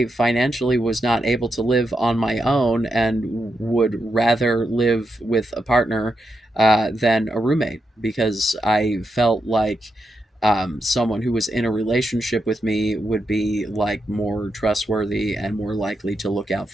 financially was not able to live on my own and would rather live with a partner than a roommate, because I felt like someone who was in a relationship with me would be like more trustworthy and more likely to look out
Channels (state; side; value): normal; both; correlation 0.85